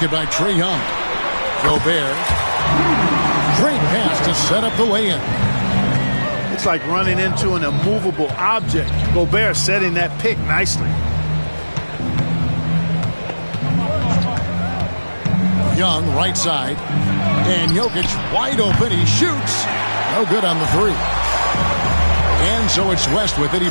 by Trae Young. Gobert. Great pass to set up the lay-in. It's like running into an immovable object. Gobert setting that pick nicely. Young, right side. And Jokic wide open. He shoots. No good on the three. And so it's West with it. He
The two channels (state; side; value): inverted; both; correlation -1.00